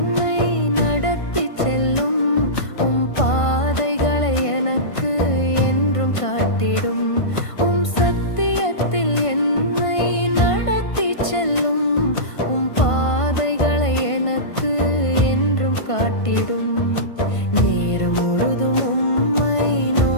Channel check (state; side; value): late; right; 1.5 ms